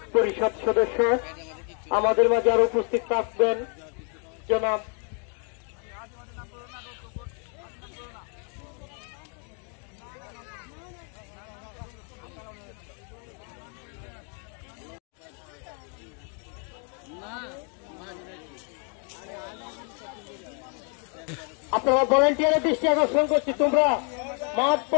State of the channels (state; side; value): quieter; right; 39.9 dB